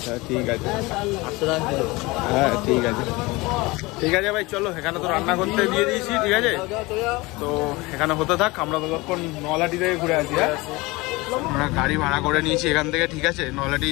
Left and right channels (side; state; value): right; quieter; 22.8 dB